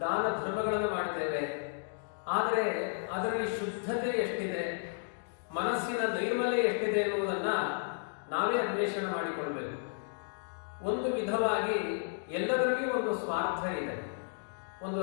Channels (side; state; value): right; silent; digital silence